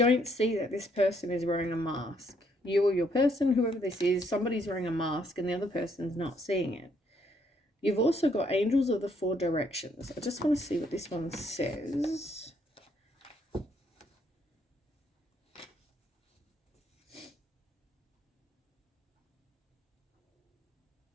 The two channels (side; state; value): both; normal; correlation 0.70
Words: see that this person is wearing a mask. You or your person, whoever this is, somebody's wearing a mask and the other person's not seeing it. You've also got angels of the 4 directions. I just want to see what this one says.